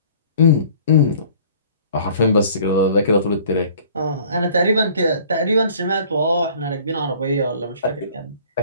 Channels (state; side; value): inverted; both; correlation -0.52